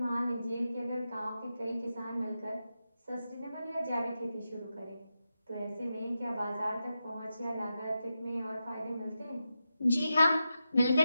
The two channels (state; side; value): inverted; both; correlation -0.89